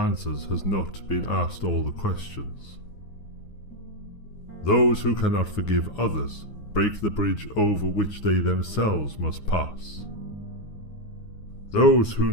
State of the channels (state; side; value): late; right; 9.6 ms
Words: has not been asked all the questions. Those who cannot forgive others break the bridge over which they themselves must pass. Those who